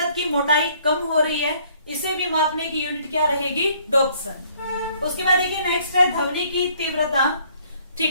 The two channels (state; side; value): inverted; both; correlation -0.62